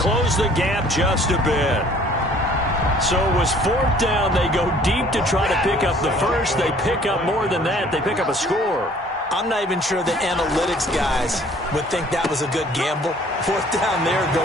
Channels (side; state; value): both; normal; correlation 0.55